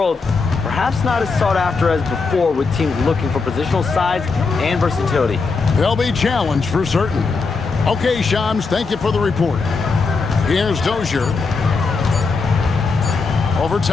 perhaps not as sought after as before with teams looking for positional size and versatility. They'll be challenged for certain. Okay, Shams, thank you for the report. Here's Dozier. Over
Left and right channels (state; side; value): quieter; right; 4.4 dB